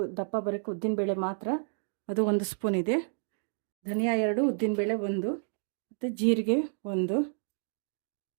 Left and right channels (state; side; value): silent; left; digital silence